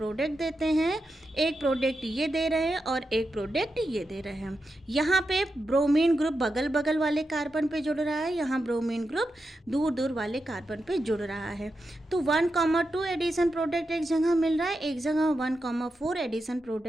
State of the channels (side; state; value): both; normal; correlation 0.88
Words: देते हैं। एक प्रोडक्ट ये दे रहे हैं और एक प्रोडक्ट ये दे रहे हैं। यहाँ पे ब्रोमीन ग्रुप बगल बगल वाले कार्बन पे जुड़ रहा है, यहाँ ब्रोमीन ग्रुप दूर दूर वाले कार्बन पे जुड़ रहा है। तो 1,2 एडिशन प्रोडक्ट एक जगह मिल रहा है, एक जगह 1,4 एडिशन